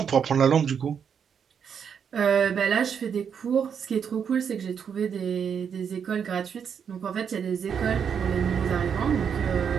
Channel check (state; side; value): quieter; left; 7.3 dB